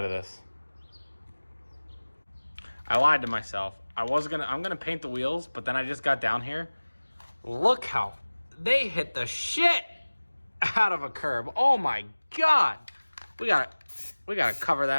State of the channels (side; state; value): both; inverted; correlation -1.00